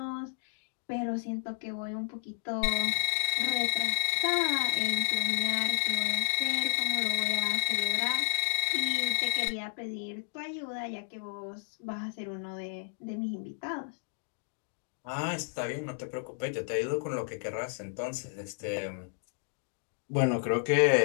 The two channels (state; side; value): silent; right; digital silence